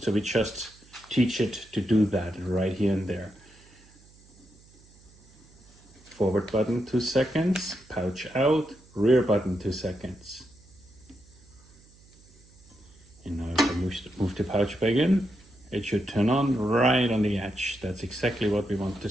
So we just teach it to do that right here and there. Forward button 2 seconds, pouch out, rear button 2 seconds. And now if I move the pouch back in, it should turn on right on the edge. That's exactly what we want to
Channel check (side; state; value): right; noise; hum, 26 dB below the sound